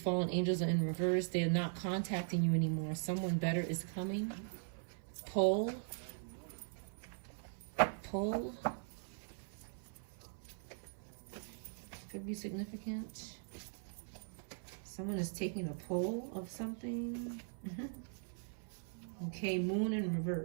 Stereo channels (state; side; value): silent; left; 51 dB below the other